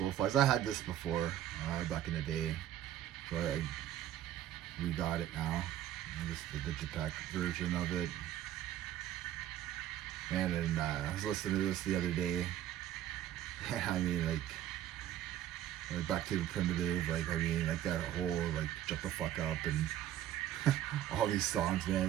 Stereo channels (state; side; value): quieter; left; 12.0 dB